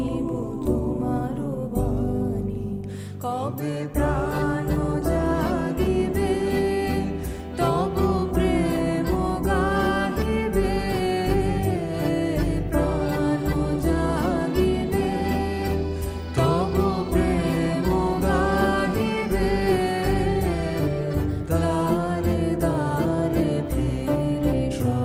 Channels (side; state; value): both; identical; correlation 1.00